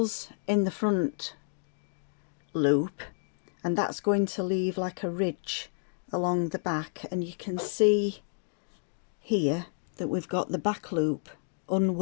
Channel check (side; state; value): right; silent; digital silence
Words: in the front loop, and that's going to leave like a ridge along the back, and you can see here that we've got the back loop